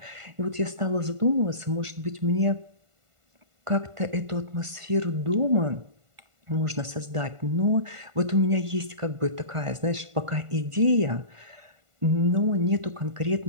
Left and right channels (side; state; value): left; late; 1.5 ms